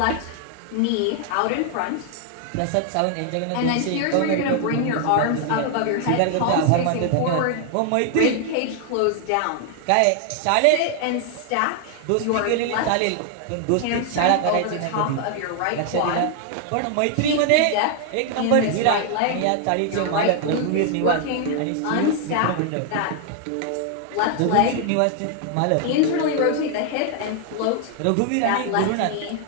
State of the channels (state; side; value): different; both; correlation 0.00